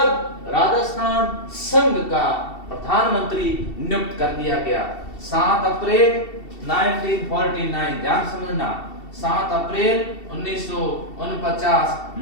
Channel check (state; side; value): late; right; 2.7 ms